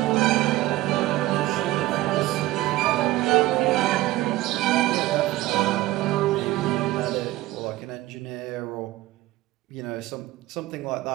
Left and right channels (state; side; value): quieter; left; 17.0 dB